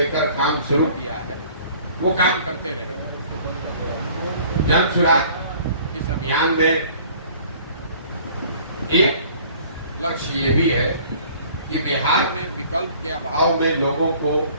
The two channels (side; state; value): both; inverted; correlation -0.52